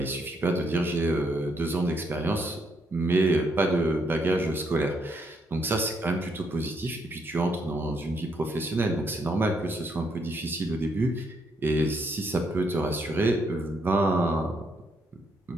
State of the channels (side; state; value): both; normal; correlation 0.74